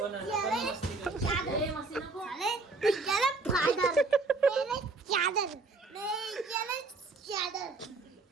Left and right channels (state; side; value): quieter; left; 3.7 dB